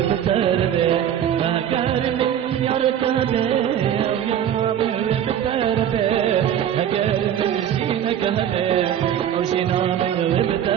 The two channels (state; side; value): quieter; left; 10.0 dB